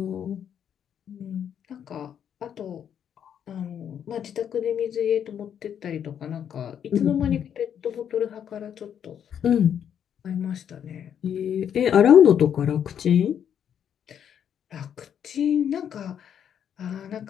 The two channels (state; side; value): quieter; right; 8.8 dB